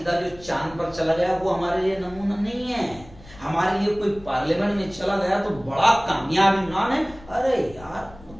جو چاند پر چلا گیا وہ ہمارے لیے نمونہ نہیں ہے، ہمارے لیے کوئی پارلیمنٹ میں چلا گیا تو بڑا کامیاب انسان ہے۔ ارے یار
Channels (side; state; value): left; noise; rumble, 21 dB below the sound